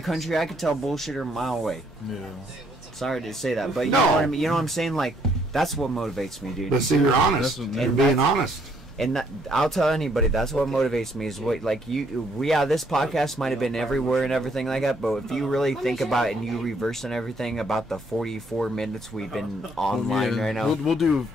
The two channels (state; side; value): normal; both; correlation 0.68